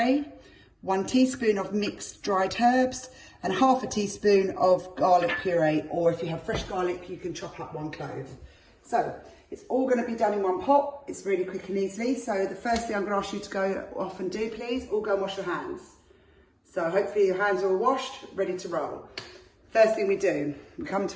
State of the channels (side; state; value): both; identical; correlation 1.00